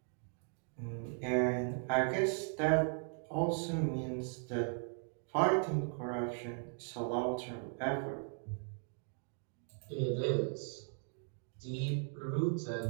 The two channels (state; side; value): silent; left; 53 dB below the other